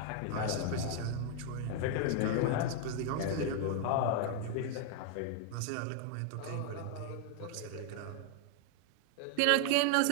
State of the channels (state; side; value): different; both; correlation 0.01